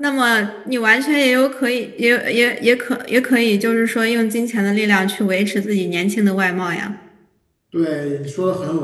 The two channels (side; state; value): both; identical; correlation 1.00